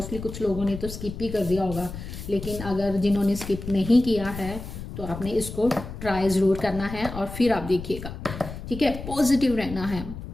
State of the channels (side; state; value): left; noise; rumble, 10 dB below the sound